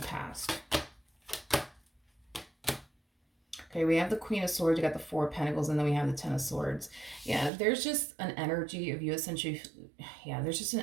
past. Okay, we have the Queen of Swords, you got the Four of Pentacles, and then we have the Ten of Swords. Yeah, there's just an energy of you essentially,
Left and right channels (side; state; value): left; drops out; at 7.5 s